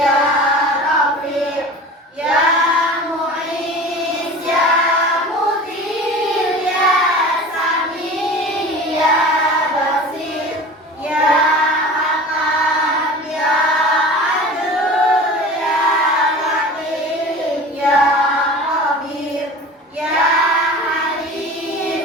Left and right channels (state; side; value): normal; both; correlation 0.37